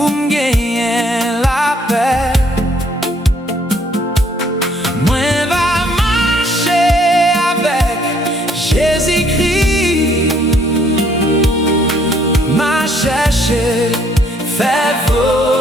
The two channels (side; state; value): both; normal; correlation 0.65